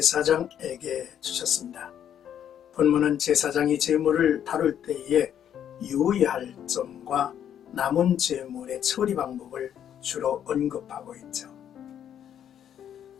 주셨습니다. 본문은 제사장이 제물을 다룰 때에 유의할 점과 남은 제물의 처리 방법을 주로 언급하고 있죠.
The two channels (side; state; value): right; quieter; 9.6 dB